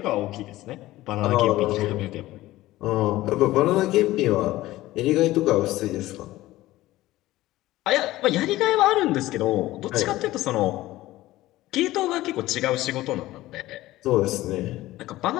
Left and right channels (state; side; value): quieter; right; 16.7 dB